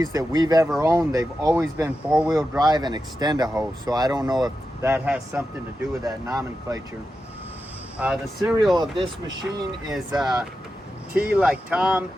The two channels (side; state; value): both; normal; correlation 0.90